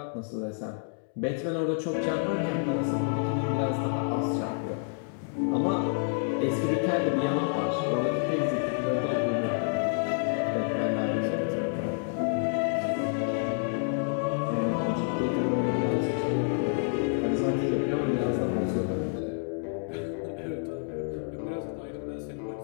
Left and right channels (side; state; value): right; silent; 58 dB below the other